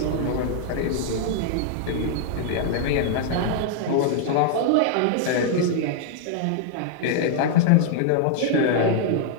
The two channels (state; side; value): different; both; correlation -0.01